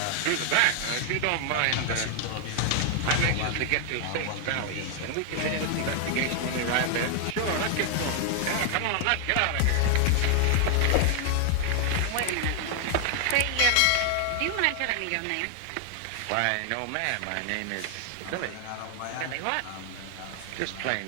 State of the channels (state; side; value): different; both; correlation 0.00